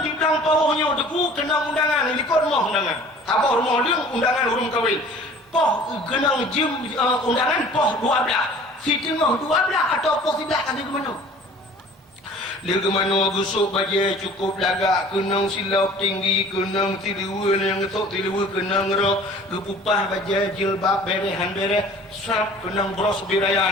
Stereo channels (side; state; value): both; normal; correlation 0.48